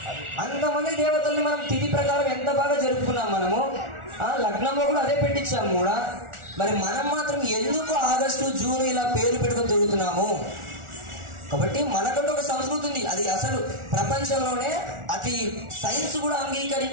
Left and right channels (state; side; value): late; left; 1.4 ms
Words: అంతమంది దేవతల్ని మనం తిథి ప్రకారం ఎంత బాగా జరుపుకున్నాం మనము. లగ్నంలో కూడా అదే పెట్టించాము కూడా. మరి మనం మాత్రం ఎందుకు ఆగస్టు జూన్ ఇలా పేర్లు పెట్టుకొని తిరుగుతున్నాము? కాబట్టి మనకంటూ ఒక సంస్కృతి ఉంది. అది అసలు ప్రపంచంలోనే అతి సైన్స్ కూడా